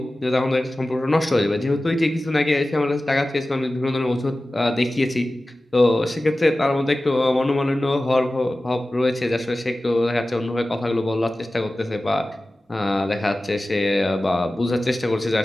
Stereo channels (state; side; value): normal; both; correlation 0.96